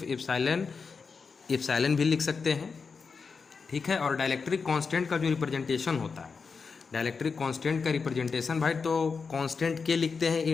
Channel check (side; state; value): right; quieter; 5.1 dB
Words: एप्सिलॉन भी लिख सकते हैं, ठीक है। और डाइलेक्ट्रिक कांस्टेंट का जो रिप्रेजेंटेशन होता है, डाइलेक्ट्रिक कांस्टेंट का रिप्रेजेंटेशन भाई तो कांस्टेंट के लिखते हैं